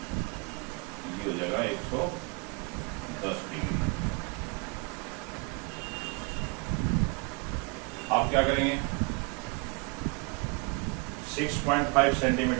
ये हो जाएगा 110 डिग्री। आप क्या करेंगे? 6.5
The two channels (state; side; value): quieter; left; 31.9 dB